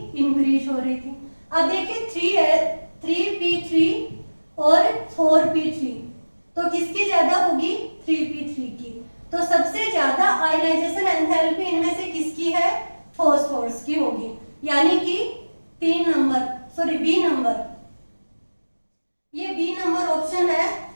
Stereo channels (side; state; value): both; inverted; correlation -1.00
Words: इंक्रीज हो रही थी। अब देखिए 3p3 और 4p3, तो किसकी ज्यादा होगी, 3p3 की। तो सबसे ज्यादा आयनाइजेशन एंथैल्पी इनमें से किसकी है, फॉस्फोरस की होगी, यानी कि 3 नंबर, सॉरी बी नंबर, ये बी नंबर ऑप्शन है,